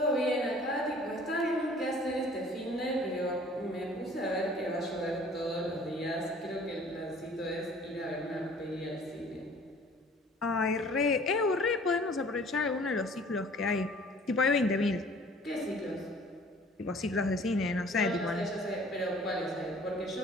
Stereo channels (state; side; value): normal; both; correlation 0.52